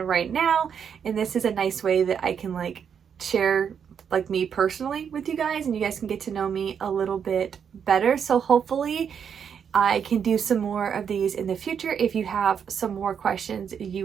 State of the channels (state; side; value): quieter; left; 7.5 dB